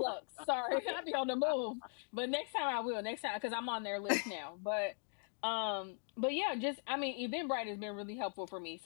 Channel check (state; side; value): silent; right; 51 dB below the other